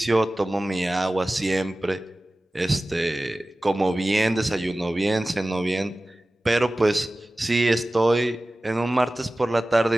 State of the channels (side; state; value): both; normal; correlation 0.97